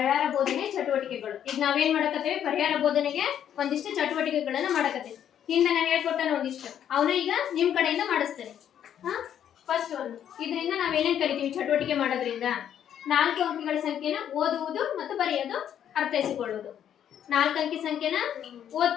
ಬೋಧನೆ ಚಟುವಟಿಕೆಗಳು. ಈಗ ನಾವೇನ್ ಮಾಡಕತ್ತೇವೆ, ಪರಿಹಾರ ಬೋಧನೆಗೆ ಒಂದಿಷ್ಟು ಚಟುವಟಿಕೆಗಳನ್ನ ಮಾಡಕತ್ತೇವೆ. ಹಿಂದೆ ನಾನು ಹೇಳ್ಕೊಟ್ಟಾನ ಒಂದಿಷ್ಟು, ಅವನು ಈಗ ನಿಮ್ ಕಡೆಯಿಂದ ಮಾಡಿಸ್ತೇನೆ. ಫಸ್ಟ್ ಒಂದು ಇದರಿಂದ ನಾವೇನೇನ್ ಕಲಿತೀವಿ ಚಟುವಟಿಕೆ ಮಾಡೋದ್ರಿಂದ? 4 ಅಂಕಿಗಳ ಸಂಖ್ಯೆನ ಓದುವುದು ಮತ್ತು ಬರೆಯೋದು, ಅರ್ಥೈಸಿಕೊಳ್ಳುವುದು. 4 ಅಂಕಿ ಸಂಖ್ಯೆನ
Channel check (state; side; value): quieter; right; 9.7 dB